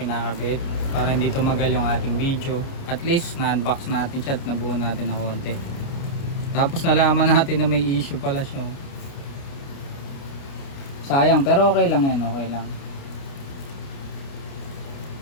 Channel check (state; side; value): late; right; 29 ms